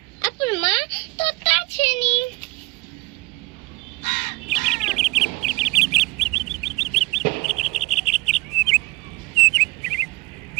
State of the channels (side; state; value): left; quieter; 23.5 dB